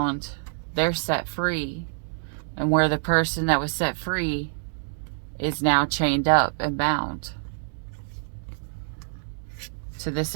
they're set free. And where the person that was set free is now chained up and bound to this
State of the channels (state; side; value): silent; left; digital silence